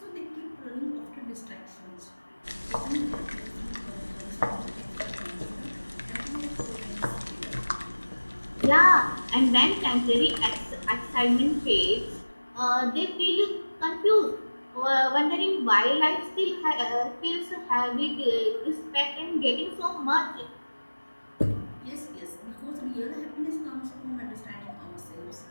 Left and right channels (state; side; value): inverted; both; correlation -1.00